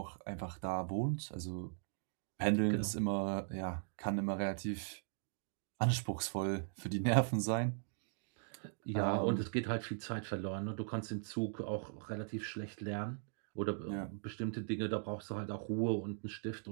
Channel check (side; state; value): left; silent; digital silence